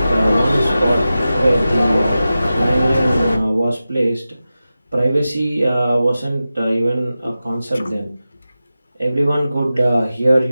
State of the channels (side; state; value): both; inverted; correlation -0.94